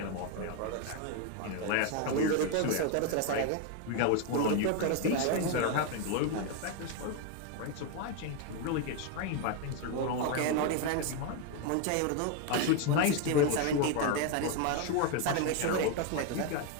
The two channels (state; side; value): different; both; correlation 0.01